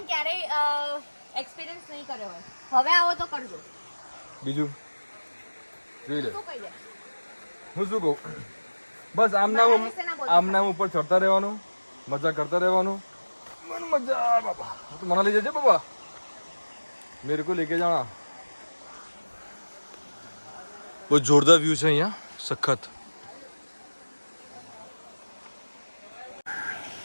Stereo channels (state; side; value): inverted; both; correlation -1.00